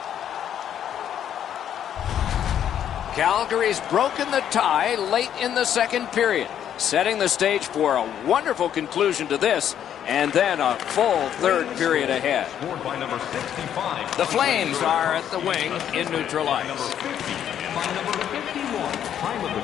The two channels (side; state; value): right; quieter; 9.8 dB